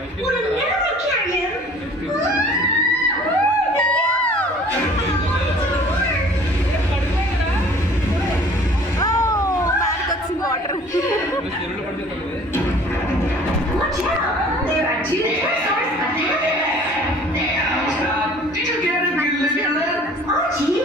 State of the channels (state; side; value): normal; both; correlation 0.50